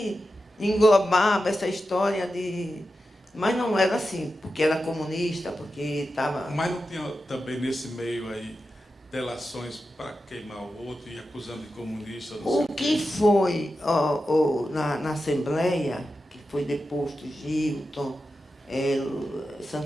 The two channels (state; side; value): normal; both; correlation 0.91